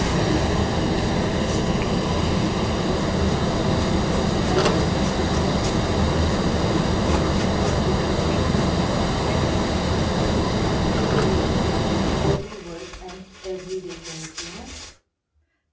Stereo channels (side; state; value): both; identical; correlation 1.00